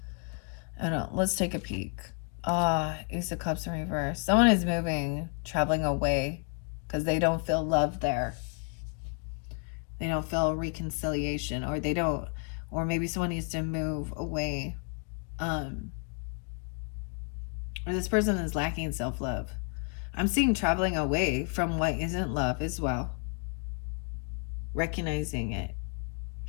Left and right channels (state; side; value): quieter; right; 36.9 dB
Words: Let's take a peek. Ace of Cups in reverse. Someone is moving, traveling away, because they don't feel love there. They don't feel reconciliation, or they don't, or maybe someone needs to move away. Or this person is lacking self-love. I'm seeing traveling away from what isn't love as well. Recognizing it.